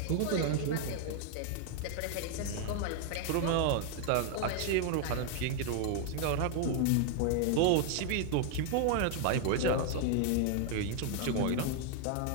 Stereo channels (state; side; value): different; both; correlation 0.00